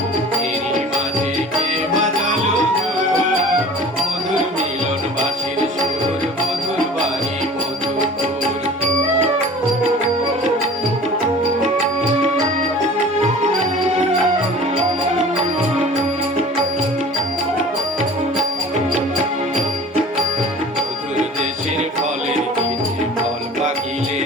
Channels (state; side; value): normal; both; correlation 0.43